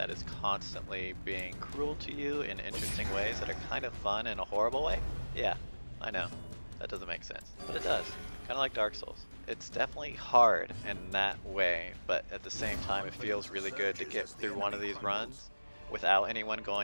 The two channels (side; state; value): both; inverted; correlation -1.00